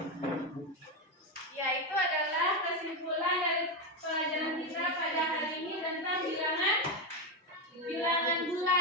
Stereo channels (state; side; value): normal; both; correlation 0.10